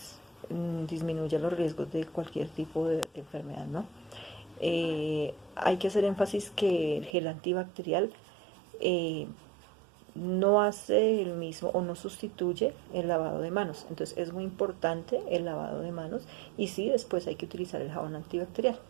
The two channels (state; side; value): drops out; left; at 7.1 s